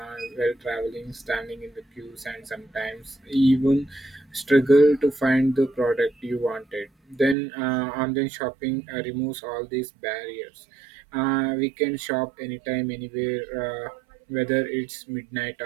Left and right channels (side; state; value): left; drops out; at 7.4 s